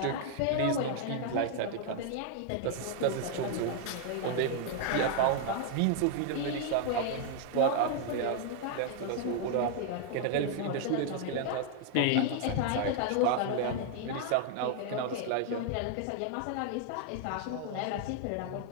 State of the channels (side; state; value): both; different; correlation 0.00